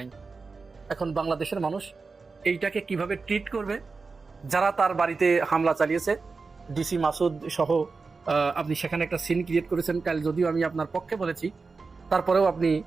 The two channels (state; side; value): quieter; left; 4.4 dB